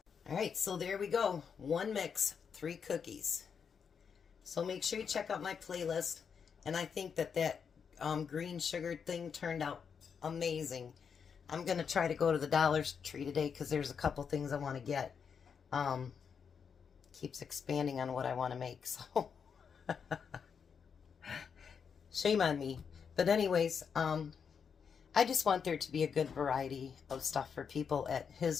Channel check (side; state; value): right; quieter; 6.6 dB